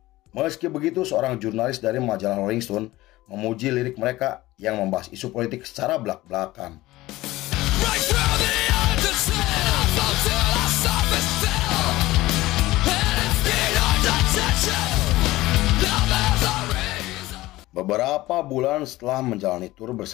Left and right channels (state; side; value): quieter; right; 17.9 dB